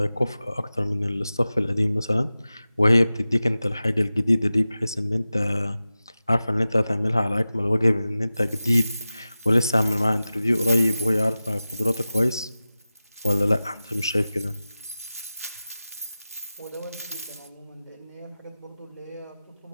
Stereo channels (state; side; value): inverted; both; correlation -0.95